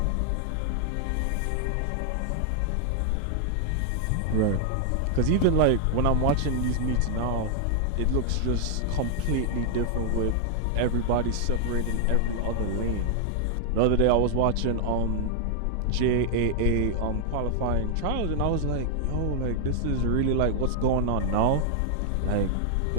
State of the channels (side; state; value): both; different; correlation 0.00